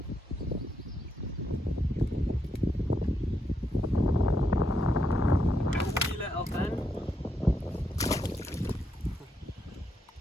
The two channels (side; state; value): both; normal; correlation 0.80